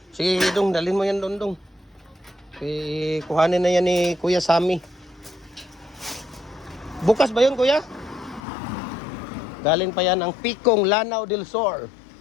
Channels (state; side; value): drops out; right; at 8.4 s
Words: Sige, dong, dalhin mo yan doon. Kuhanin na yan ni Kuya Sammy. Bukas ba yun Kuya? Galing pa yan ang Pikong, Lanao del Sur.